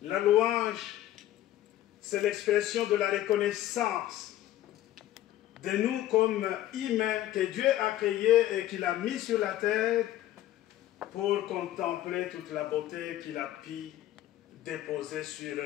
La louange, c'est l'expression de la reconnaissance de nous comme humains que Dieu a créés et qu'il a mis sur la terre pour contempler toute la beauté qu'il a pu déposer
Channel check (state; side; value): quieter; right; 13.6 dB